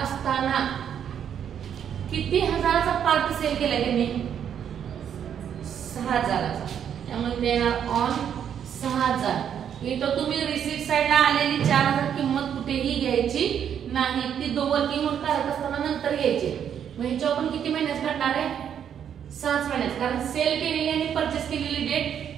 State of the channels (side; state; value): left; quieter; 8.8 dB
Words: असताना किती हजाराचा पार्ट सेल केलाय त्यांनी? 6000चा. त्यामुळे देणार ऑन 6000. इथं तुम्ही रिसीट साइडला आलेली 4000 किंमत कुठेही घ्यायची नाही. ती वर्किंग नोट काढत असताना नंतर घ्यायची. मग ह्याच्यावर पण किती महिन्यात काढणार आहे? 6 महिन्यात, कारण सेल केलेली आणि परचेस केलेली